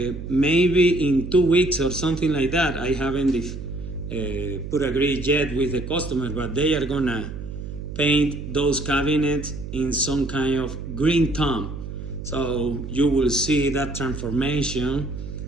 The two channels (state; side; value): noise; right; hum, 8 dB below the sound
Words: in 2 weeks or something like that. I haven't put agreed yet with the customer, but they are gonna paint those cabinets in some kind of green tone. So you will see that transformation